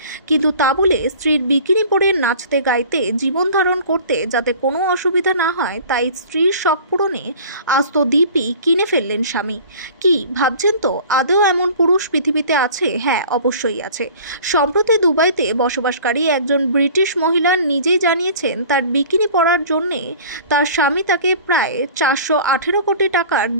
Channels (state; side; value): inverted; both; correlation -0.44